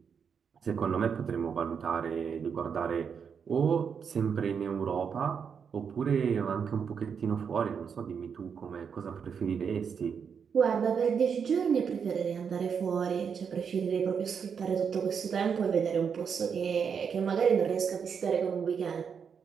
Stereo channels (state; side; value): quieter; left; 6.7 dB